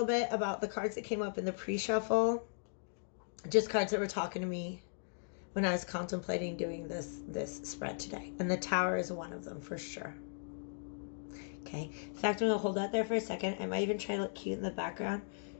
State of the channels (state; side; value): silent; right; digital silence